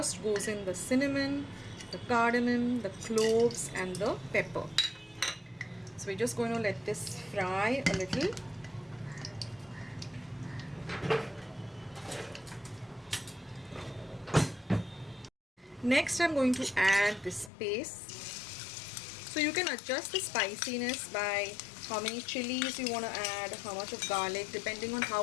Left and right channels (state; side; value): drops out; right; at 17.5 s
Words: goes in the cinnamon, the cardamom, the cloves, and the pepper. So we're just going to let this fry a little. Next I'm going to add this paste. So you can adjust the spiciness by how many chilies you want to add, how much of garlic, depending on